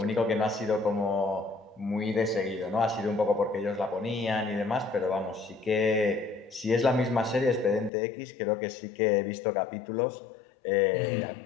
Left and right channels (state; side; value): drops out; right; at 7.9 s